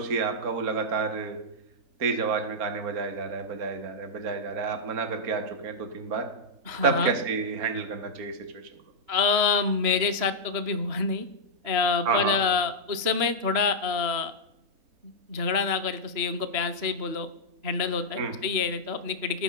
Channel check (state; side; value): late; left; 3.1 ms